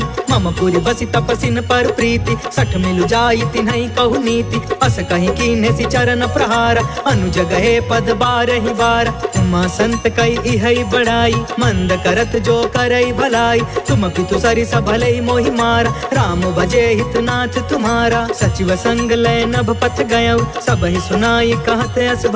मम पुरि बसि तपसिन पर प्रीति सठ मिलु जाई तिन्हई कहु नीति अस कहि कीन्हे सि चरण प्रहार अनुज गए पद बारहि बार उमा संत कई इहई बड़ाई मंद करत जो करई भलाई तुम पितु सरिस भलई मोहि मारा राम भजे हितनाथ तुम्हारा सचिव संग लय नभ पथ गयउ सब ही सुनाई कहत अस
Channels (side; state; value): both; identical; correlation 1.00